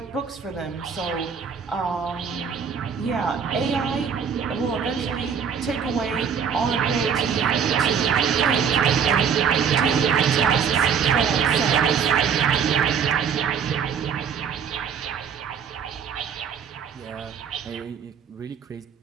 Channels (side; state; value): left; quieter; 7.0 dB